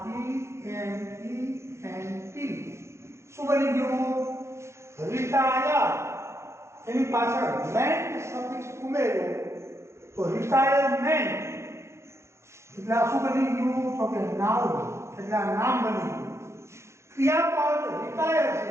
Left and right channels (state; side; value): late; left; 0.13 ms